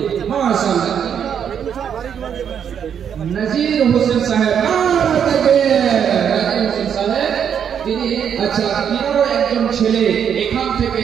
মাশাআল্লাহ। নাজির হোসেন সাহেব, নাজির হোসেন সাহেব তিনি, আচ্ছা, তিনারও একজন ছেলে এখান থেকে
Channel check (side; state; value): left; quieter; 8.2 dB